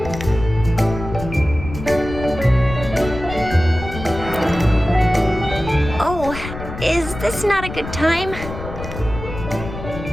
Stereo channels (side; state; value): left; noise; rumble, 10 dB below the sound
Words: Oh, is this not a good time?